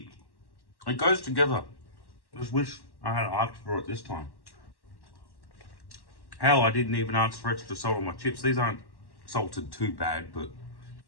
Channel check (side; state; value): right; late; 1.1 ms